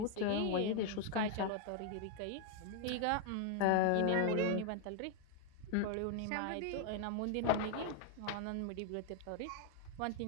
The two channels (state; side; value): different; both; correlation 0.00